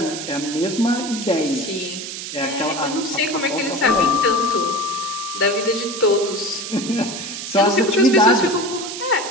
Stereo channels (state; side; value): noise; right; hiss, 8 dB below the sound